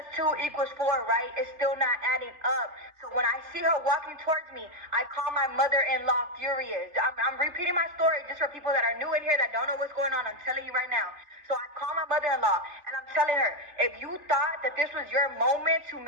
2 equals 4, right? It's still not adding up. So when I see her walking towards me, I call my mother-in-law furious. I'm repeating my story just for people that are new in here that don't know what's going on. I'm telling you right now. So I call my mother-in-law and I'm telling her, if you thought that this was your moment to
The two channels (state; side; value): late; left; 3.2 ms